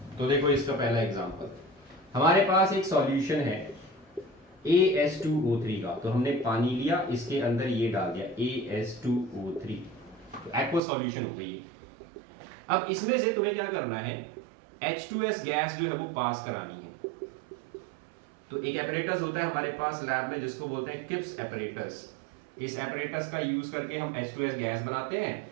तो देखो इसका पहला एग्जांपल, हमारे पास एक सॉल्यूशन है AS2O3 का, तो हमने पानी लिया, इसके अंदर ये डाल दिया AS2O3, तो एक्वा सॉल्यूशन हो गई है। अब इसमें से तुम्हें क्या करना है, H2S गैस जो है वो पास करानी है। तो एक एपरेटस होता है हमारे पास लैब में जिसको बोलते हैं किप्स एपरेटस। इस एपरेटस का यूज करके हम H2S गैस बनाते हैं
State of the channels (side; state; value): left; drops out; at 10.8 s